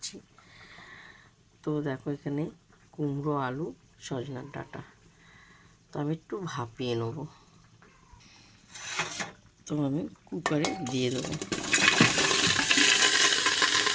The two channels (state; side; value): identical; both; correlation 1.00